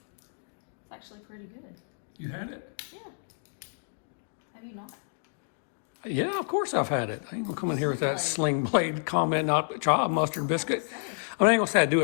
actually pretty good. You had it? Yeah. Have you not? Yeah, of course I've had it. I ain't gonna come in here with that sling blade comment, not try a mustard biscuit. I mean, I ain't gonna say I do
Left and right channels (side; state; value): right; silent; digital silence